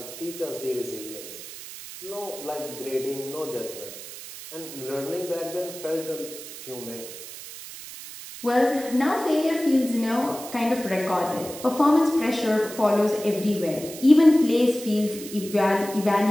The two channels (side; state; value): right; noise; hiss, 13 dB below the sound